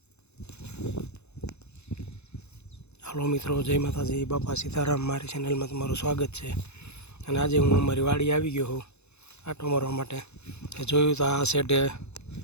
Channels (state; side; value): late; right; 0.81 ms